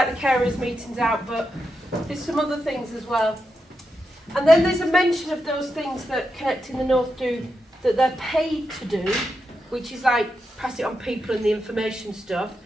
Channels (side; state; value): both; normal; correlation 0.86